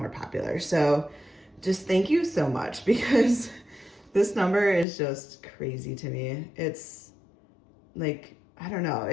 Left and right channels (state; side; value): drops out; right; at 4.9 s